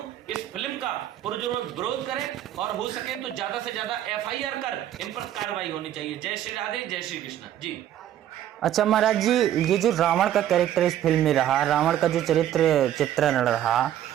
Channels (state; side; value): quieter; left; 11.7 dB